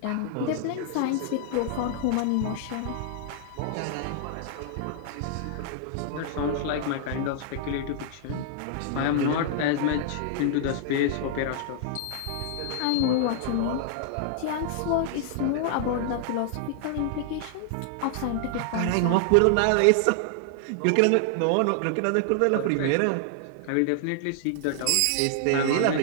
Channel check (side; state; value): both; different; correlation 0.00